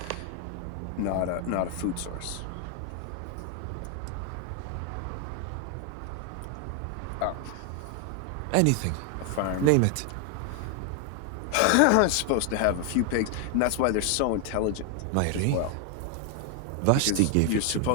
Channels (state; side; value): different; both; correlation 0.01